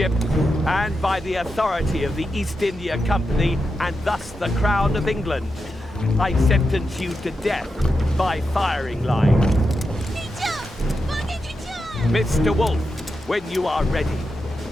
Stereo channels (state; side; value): normal; both; correlation 0.88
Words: and by the authority of the East India Company, and thus the Crown of England, I sentence you to death by firing line. Mr. Wolf, when you are ready.